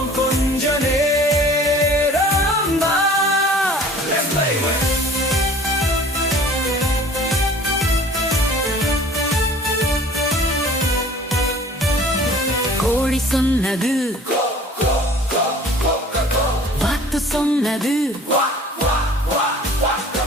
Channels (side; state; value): both; normal; correlation 0.48